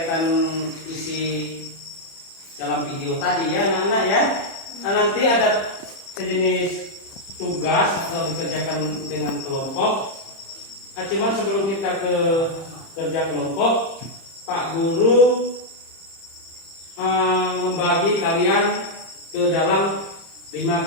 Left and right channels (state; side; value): late; right; 30 ms